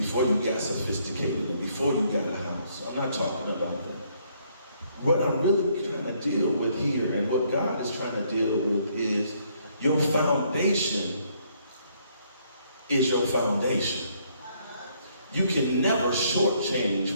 you got sophisticated, and before you got a house. I'm not talking about that. What I'm really trying to deal with here, and what God is trying to deal with, is your foundation is your foundation. You can never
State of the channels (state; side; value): inverted; both; correlation -0.68